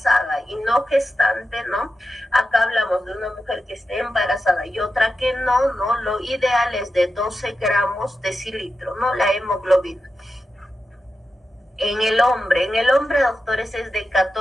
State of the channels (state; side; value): normal; both; correlation 0.90